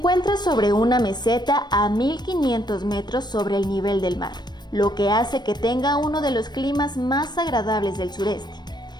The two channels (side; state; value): right; late; 0.21 ms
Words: sobre una meseta a 1500 metros sobre el nivel del mar, lo que hace que tenga uno de los climas más agradables del sureste.